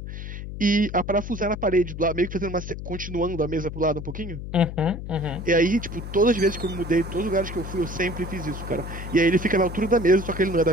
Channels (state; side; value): noise; left; hum, 8 dB below the sound